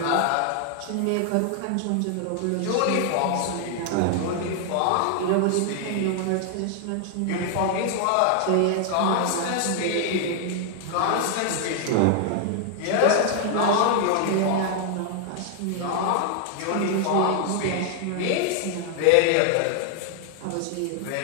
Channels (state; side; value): different; both; correlation 0.00